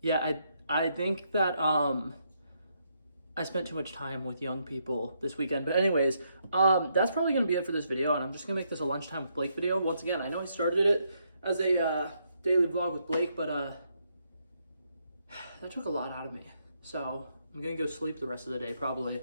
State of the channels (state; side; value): inverted; both; correlation -0.76